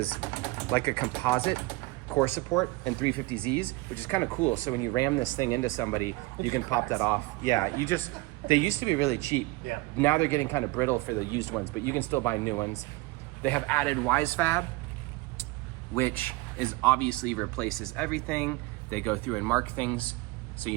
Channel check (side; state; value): left; quieter; 22.2 dB